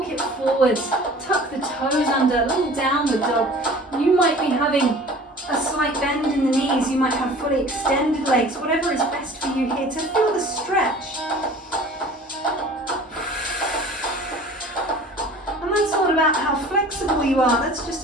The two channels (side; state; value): both; normal; correlation 0.45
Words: it forwards. Tuck the toes under, a little downward dog. You might be having a slight bend in the knees, you might have fully extended legs, whatever is best for you here to feel the stretch. And that's not about how flexible you are, that's just